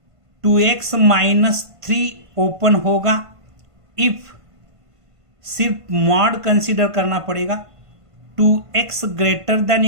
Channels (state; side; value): late; left; 1.5 ms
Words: 2x माइनस 3 ओपन होगा इफ सिर्फ मॉड कंसीडर करना पड़ेगा 2x greater than